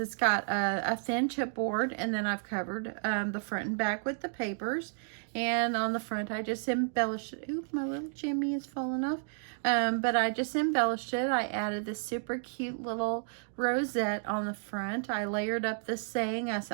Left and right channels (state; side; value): silent; left; digital silence